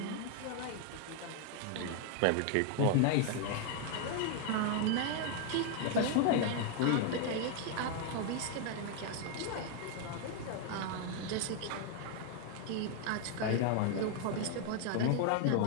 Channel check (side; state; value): both; different; correlation 0.00